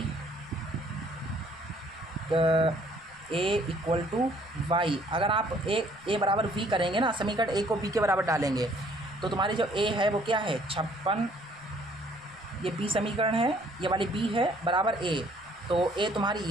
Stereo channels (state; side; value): noise; left; rumble, 28 dB below the sound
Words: A equal to Y, अगर आप ए बराबर v करेंगे ना, समीकरण ए को b के बराबर डालेंगे तो तुम्हारी जो a है वो क्या है 56, ये b समीकरण है, ये वाली b है बराबर a। तो a तुम्हारी